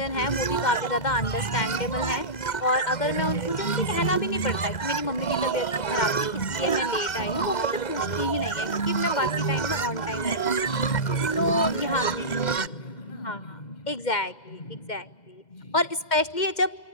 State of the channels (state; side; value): late; right; 2.0 ms